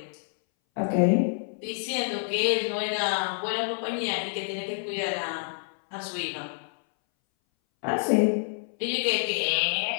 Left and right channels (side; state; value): right; silent; 60 dB below the other